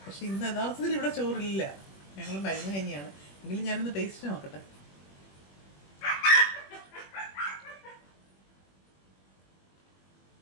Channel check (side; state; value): right; late; 21 ms